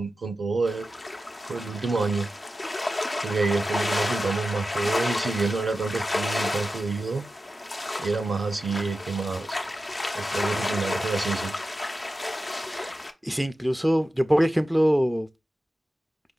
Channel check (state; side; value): normal; both; correlation 0.92